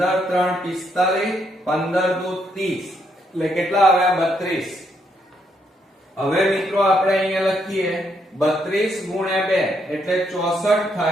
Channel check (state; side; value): normal; both; correlation 0.75